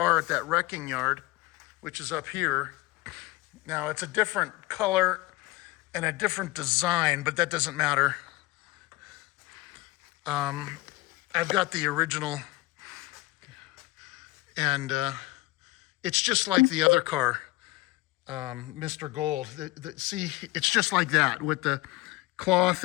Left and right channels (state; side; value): quieter; right; 19.8 dB